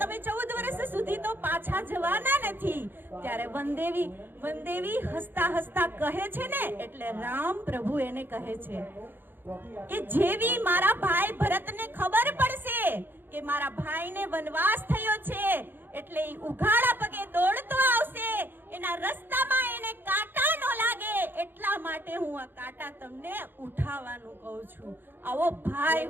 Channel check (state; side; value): late; left; 0.097 ms